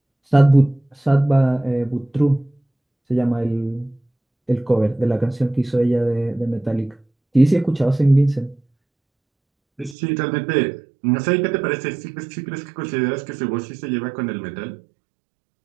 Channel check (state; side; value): drops out; left; at 10.0 s